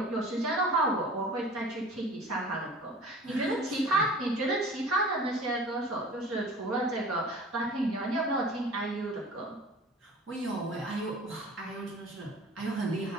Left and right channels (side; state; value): both; normal; correlation 0.43